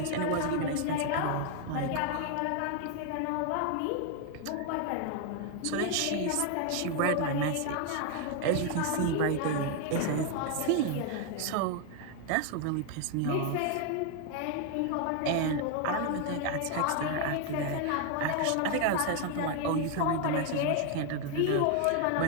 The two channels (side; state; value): both; different; correlation 0.01